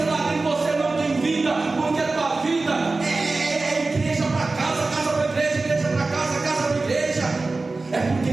ah, em você não tem vida, porque a tua vida é igreja para casa, casa para igreja, igreja para casa, casa para igreja. É porque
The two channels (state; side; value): quieter; left; 3.5 dB